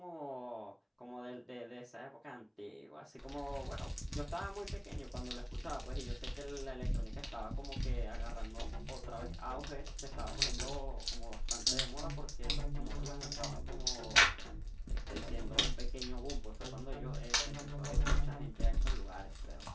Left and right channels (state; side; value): identical; both; correlation 1.00